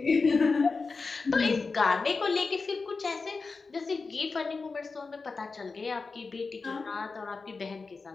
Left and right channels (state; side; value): quieter; right; 4.3 dB